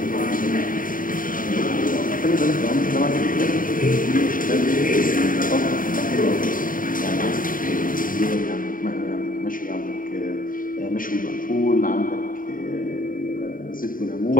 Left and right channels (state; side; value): late; right; 0.40 ms